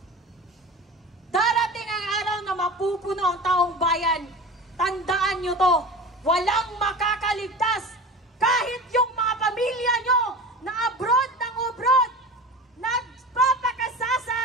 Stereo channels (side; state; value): both; normal; correlation 0.33